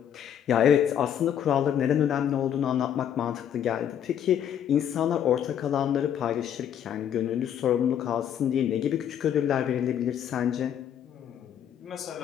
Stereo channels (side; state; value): right; quieter; 9.5 dB